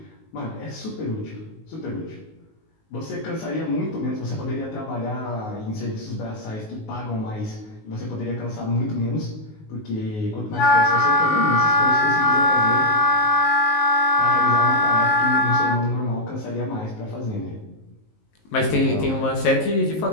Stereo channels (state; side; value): late; right; 19 ms